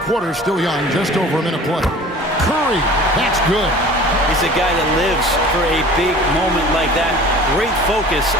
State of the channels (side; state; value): both; normal; correlation 0.44